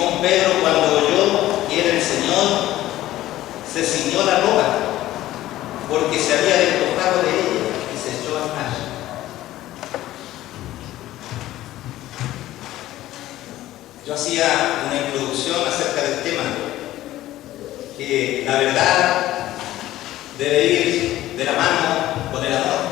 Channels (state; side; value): quieter; right; 14.9 dB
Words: Pedro, cuando oyó que era el Señor, se ciñó la ropa, porque se había despojado de ella y se echó al mar. Yo hacía una introducción acerca del tema, que la verdad debe ir de la mano con el amor,